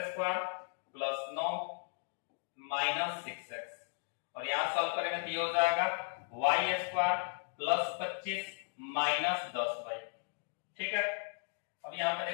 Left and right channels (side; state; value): right; silent; 54 dB below the other